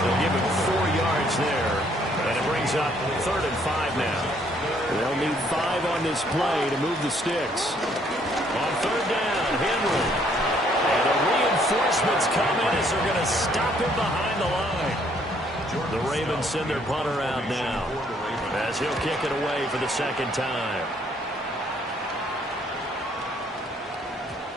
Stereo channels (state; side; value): normal; both; correlation 0.66